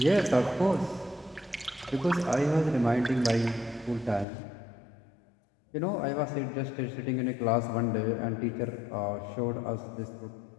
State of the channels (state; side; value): drops out; right; at 4.2 s